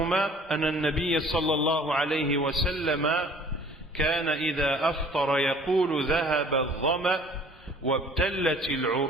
أن النبي صلى الله عليه وسلم كان إذا أفطر يقول ذهب الظمأ وابتلت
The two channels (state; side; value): normal; both; correlation 0.52